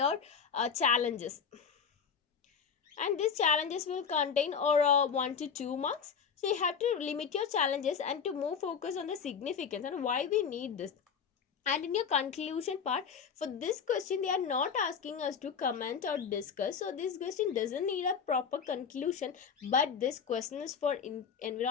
challenges, and these challenges will contain or 1 to 2 marks. So you have to limit your challenges and to move focus on the significance and why we need this. And in your conclusion part, for this question they are not asking us to comment or discuss, so this question doesn't need a proper conclusion. But this question is for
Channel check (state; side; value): quieter; right; 6.6 dB